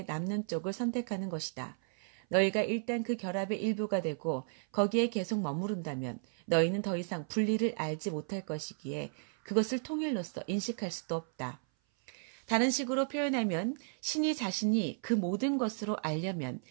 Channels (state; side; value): silent; left; 55 dB below the other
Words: 남는 쪽을 선택하는 것이다. 너희가 일단 그 결합의 일부가 되고 거기에 계속 머무른다면 너희는 더 이상 분리를 알지 못할 것이기에 그것을 통일로서 인식할 수도 없다. 다른 식으로 표현하면 신이 자신이 그 모든 것으로 알려면